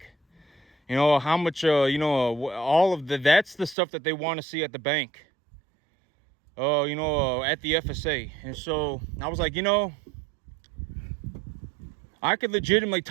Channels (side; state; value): left; drops out; at 3.8 s